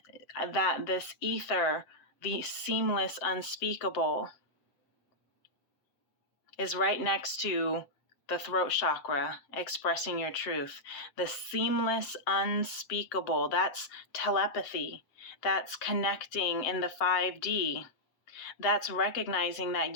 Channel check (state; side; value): late; right; 7.6 ms